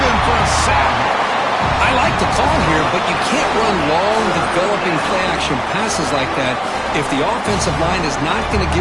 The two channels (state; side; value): identical; both; correlation 1.00